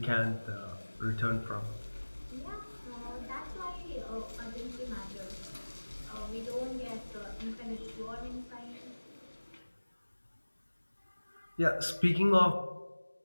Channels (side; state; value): both; inverted; correlation -1.00